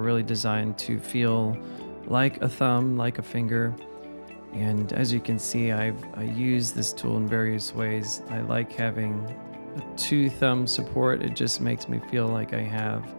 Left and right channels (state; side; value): inverted; both; correlation -1.00